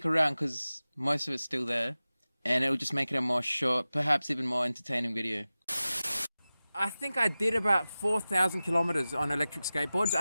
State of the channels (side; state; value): both; inverted; correlation -0.96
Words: around because most of it's still there, and it'll just make it a more short, perhaps even more entertaining video. I think I did about 4,000 kilometers on electric skateboards.